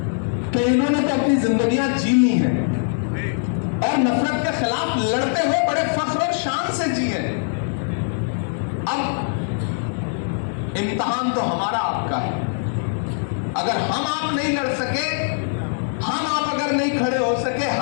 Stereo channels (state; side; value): silent; right; digital silence